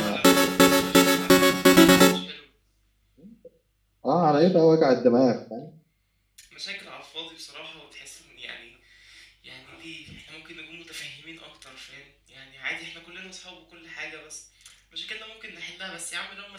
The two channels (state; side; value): identical; both; correlation 1.00